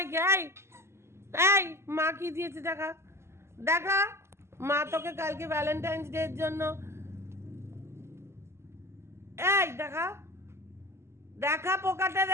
এই এই মা কি দিয়েছে দেখা, দেখা। মা তোকে কালকে ভ্যালেন্টাইন্স ডে এর জন্য, এই দেখা দেখা পোকাটা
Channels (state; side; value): late; left; 0.13 ms